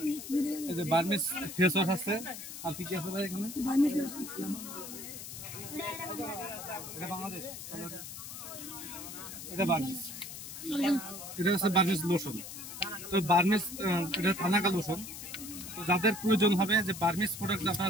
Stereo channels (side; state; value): left; noise; hiss, 10 dB below the sound